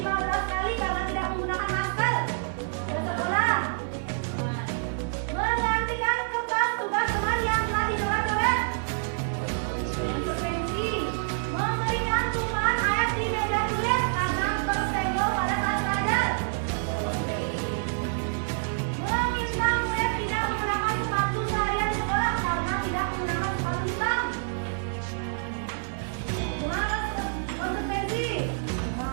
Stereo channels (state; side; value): silent; left; digital silence